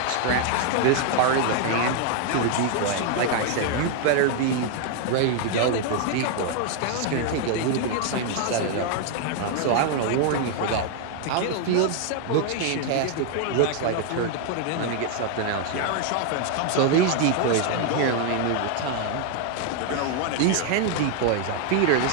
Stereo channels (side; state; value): both; different; correlation 0.00